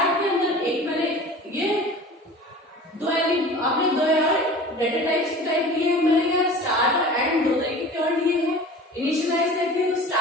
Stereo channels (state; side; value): normal; both; correlation 0.40